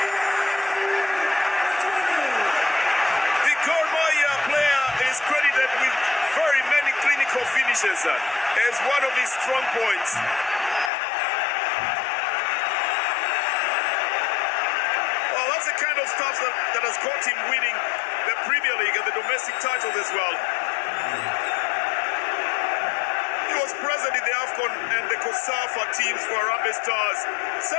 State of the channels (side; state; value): right; drops out; at 10.9 s